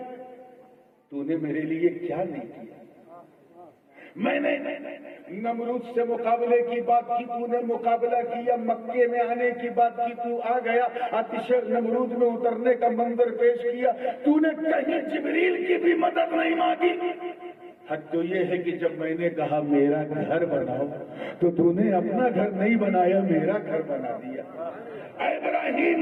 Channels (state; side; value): identical; both; correlation 1.00